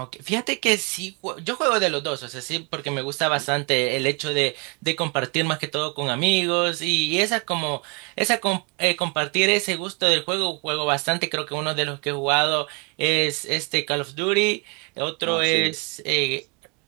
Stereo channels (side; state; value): left; quieter; 32.5 dB